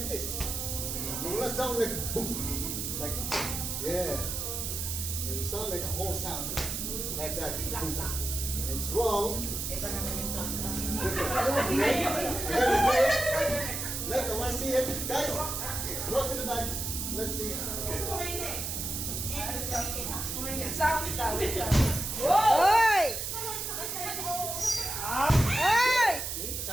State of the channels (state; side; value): noise; right; hiss, 3 dB below the sound